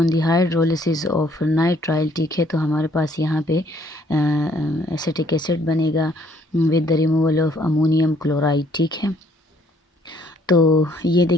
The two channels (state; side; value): normal; both; correlation 0.64